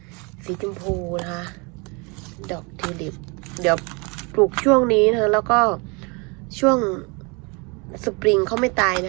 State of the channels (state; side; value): quieter; left; 30.3 dB